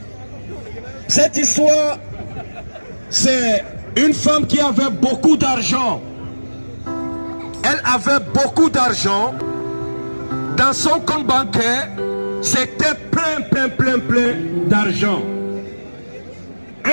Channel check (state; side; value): inverted; both; correlation -1.00